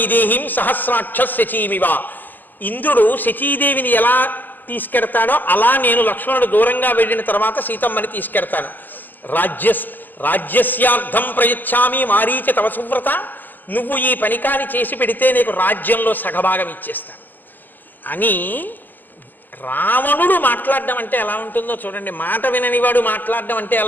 సహస్రాక్ష శచీమివ. ఇంద్రుడు శచీదేవిని ఎలా తీసుకెడతాడో అలా నేను లక్ష్మణుడు దూరంగా వెళ్ళిన తర్వాత సీతమ్మని తీసుకెడతాను. రాజ్యస్యార్థం ప్రయచ్చామి మారీచ తవ సువ్రత. నువ్వు ఈ పనికాని చేసి పెడితే నీకు రాజ్యంలో సగభాగం ఇచ్చేస్తాను అని. రావణుడు మాట్లాడడం అంటే ఎలా ఉంటుందో చూడండి. మాట విననివాడు మాట్లాడడం అంటే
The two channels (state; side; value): late; right; 0.087 ms